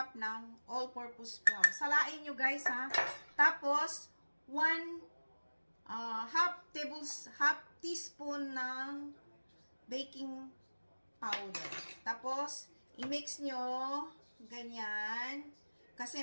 ng all-purpose flour. Salain nyo guys ha. Tapos, half teaspoon ng baking powder. Tapos, i-mix nyo ganyan.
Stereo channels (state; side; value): inverted; both; correlation -1.00